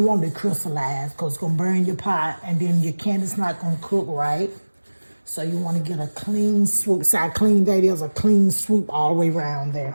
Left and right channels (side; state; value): both; inverted; correlation -1.00